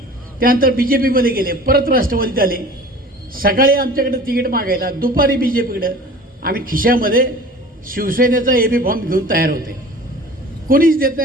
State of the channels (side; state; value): both; normal; correlation 0.42